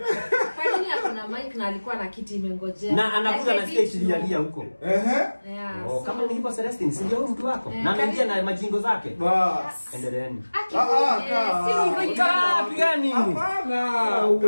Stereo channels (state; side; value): inverted; both; correlation -1.00